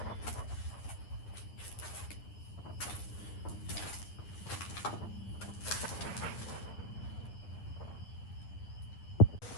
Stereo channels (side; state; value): right; late; 9.8 ms